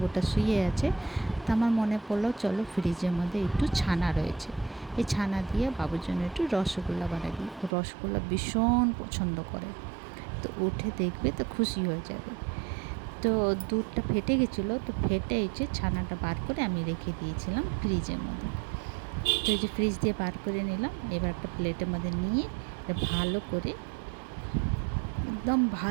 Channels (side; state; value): left; drops out; at 7.7 s